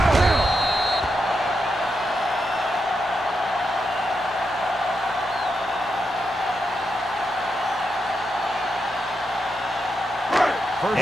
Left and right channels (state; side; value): normal; both; correlation 0.85